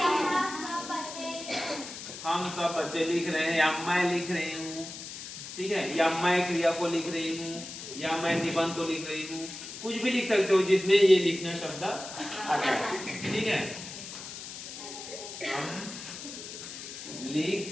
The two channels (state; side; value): noise; left; hiss, 10 dB below the sound